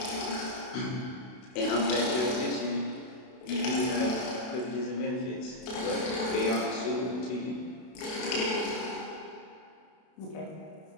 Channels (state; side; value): late; right; 32 ms